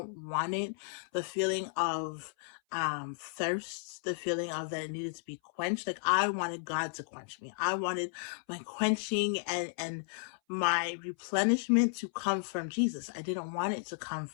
want it. The feeling of thirst, the feeling of that it needed to be quenched. Like, I wanted God to quench me. I wanted my quenching and my replenishment to come from Jesus. I didn't want it to come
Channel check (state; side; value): silent; right; 55 dB below the other